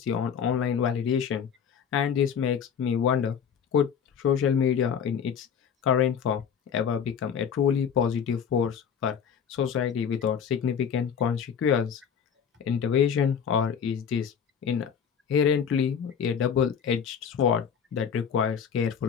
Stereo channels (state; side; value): quieter; right; 7.4 dB